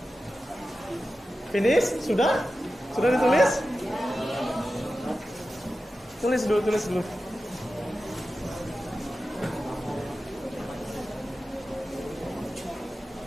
Finish? Sudah? Sudah ditulis? Tulis dulu.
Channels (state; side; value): normal; both; correlation 0.93